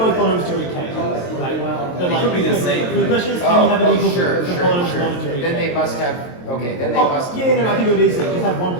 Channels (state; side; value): late; right; 23 ms